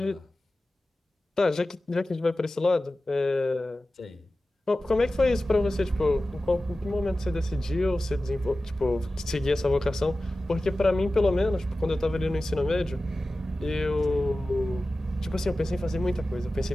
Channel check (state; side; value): normal; both; correlation 0.95